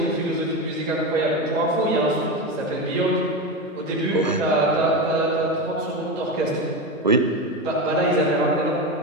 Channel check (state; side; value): normal; both; correlation 0.19